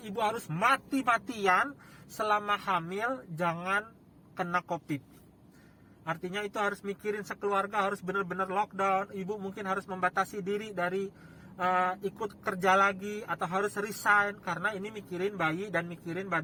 harus mati-matian selama hamil jangan kena COVID. Artinya itu harus mikirin sekeluarga, harus benar-benar lockdown. Ibu mungkin harus membatasi diri dari ikut kerja lagi atau harus resign, karena ini mikirin bayi dan mikirin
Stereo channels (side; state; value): both; identical; correlation 1.00